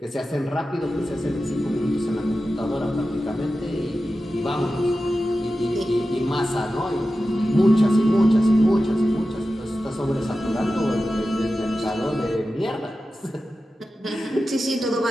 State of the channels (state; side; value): normal; both; correlation 0.93